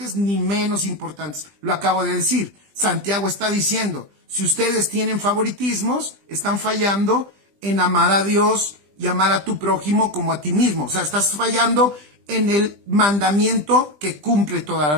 ni menos importantes. Lo acabo de decir. Santiago está diciendo, si ustedes tienen favoritismos, están fallando en amar a Dios y amar a tu prójimo como a ti mismo. O sea, estás fallando en el mandamiento que cumple toda la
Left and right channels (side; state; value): left; late; 20 ms